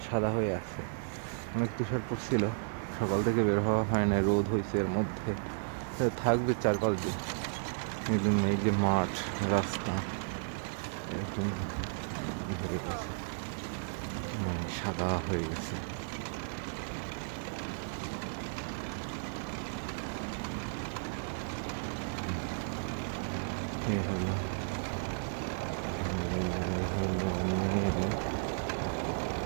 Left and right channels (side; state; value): left; silent; digital silence